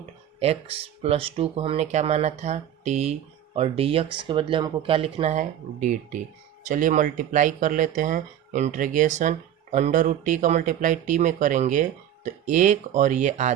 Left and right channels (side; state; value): left; quieter; 10.8 dB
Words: x प्लस 2 को हमने क्या माना था t और dx के बदले हमको क्या लिखना है dt। चलिए मल्टीप्लाई कर लेते हैं। इंटीग्रेशन अंडर रूट टी का मल्टीप्लाई टी में करेंगे तो 1 और ये